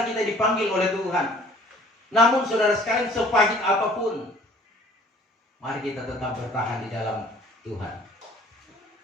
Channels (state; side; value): normal; both; correlation 0.53